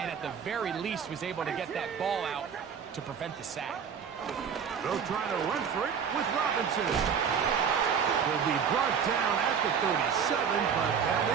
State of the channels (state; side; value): quieter; left; 7.1 dB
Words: at the very least was able to get that ball out to prevent the sack. They'll try to run for it with Robinson. He'll be brought down at the 37, but that